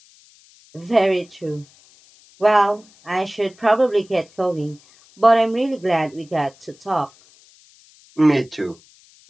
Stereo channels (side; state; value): left; noise; hiss, 28 dB below the sound